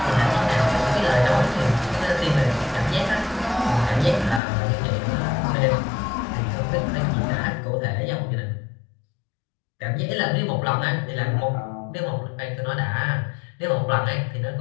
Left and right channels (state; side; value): drops out; right; at 4.4 s